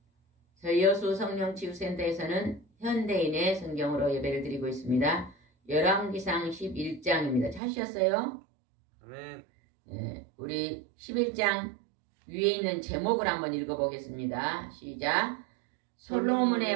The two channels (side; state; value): left; drops out; at 7.6 s